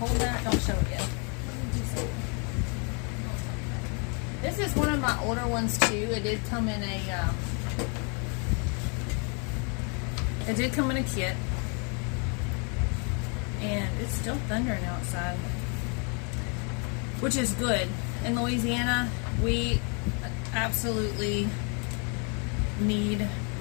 that, don't show it yet. This is one of my older ones too. It did come in a kit, and it's still thundering outside, which is good. In Louisiana, we absolutely need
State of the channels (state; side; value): quieter; right; 36.1 dB